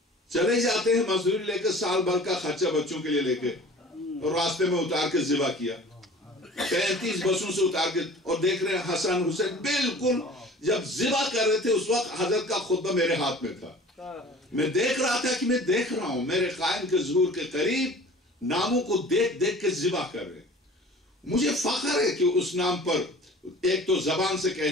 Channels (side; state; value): both; normal; correlation 0.45